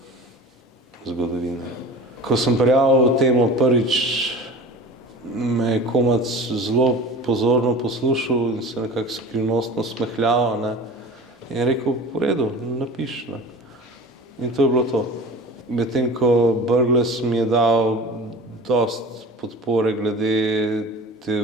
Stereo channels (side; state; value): both; normal; correlation 0.36